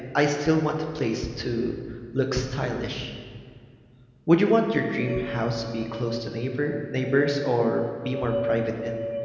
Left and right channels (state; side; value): identical; both; correlation 1.00